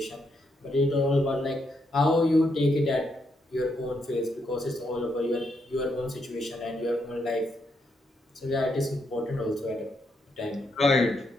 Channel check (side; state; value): both; normal; correlation 0.78